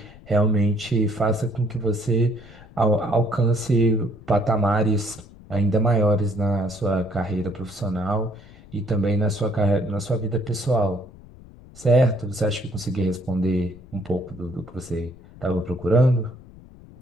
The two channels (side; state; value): left; noise; rumble, 21 dB below the sound